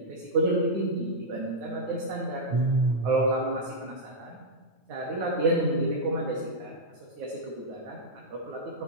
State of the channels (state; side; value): late; left; 9.1 ms